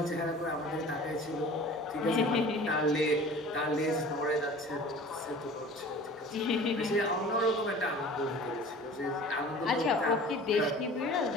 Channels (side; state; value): both; normal; correlation 0.42